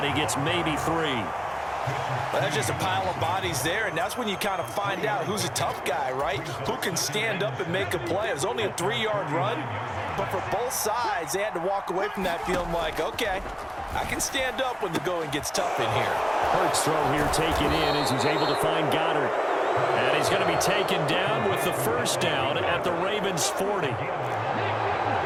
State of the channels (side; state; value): both; identical; correlation 1.00